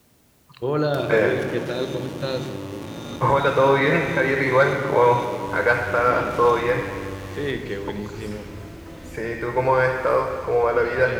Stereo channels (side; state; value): both; identical; correlation 1.00